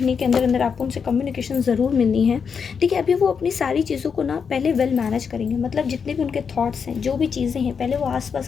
के अंदर अंदर आपको उनसे कम्युनिकेशन ज़रूर मिलनी है। देखिए, अभी वो अपनी सारी चीज़ों को ना पहले वेल मैनेज करेंगे, मतलब जितने भी उनके थॉट्स हैं, जो भी चीज़ें हैं, पहले वो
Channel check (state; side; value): quieter; right; 6.3 dB